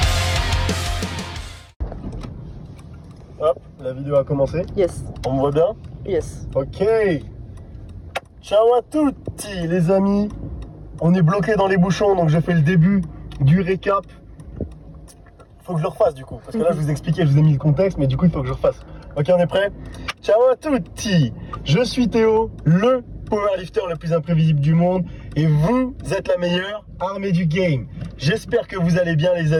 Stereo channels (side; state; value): both; identical; correlation 1.00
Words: Hop, la vidéo a commencé. Yes. On me voit bien? Yes. Ok. Ciao à tutti les amis. On est bloqué dans les bouchons, donc je fais le début du récap. Faut que je le refasse du coup, parce que là je vous expliquais, je vous ai mis le contexte, mais du coup il faut que je refasse. Ok, on est prêt? Ciao à tutti. Je suis Théo, le powerlifter le plus imprévisible du monde, et vous êtes la meilleure armée du game. J'espère que vous allez bien les